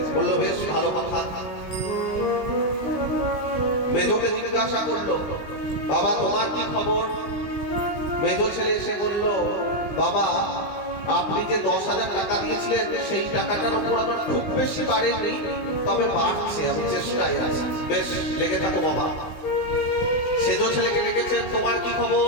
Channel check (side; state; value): right; late; 20 ms